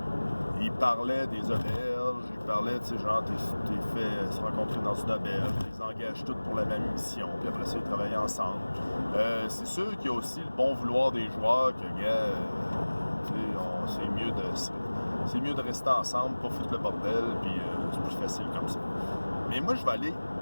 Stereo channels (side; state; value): both; inverted; correlation -1.00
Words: Il parlait des auberges, il parlait, tu sais, genre, t'es fait se rencontrer dans une auberge, tu les engages toutes pour la même mission, puis après ça, ils travaillent ensemble. C'est sûr qu'il y a aussi le bon vouloir des joueurs que, tu sais, c'est mieux de rester ensemble, pas foutre le bordel, puis c'est plus facile comme ça. Mais moi, je vais aller